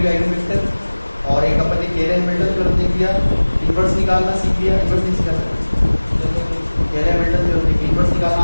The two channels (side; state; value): both; inverted; correlation -1.00